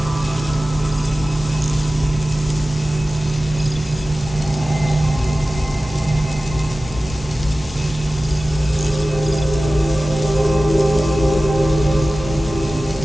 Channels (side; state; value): both; normal; correlation 0.96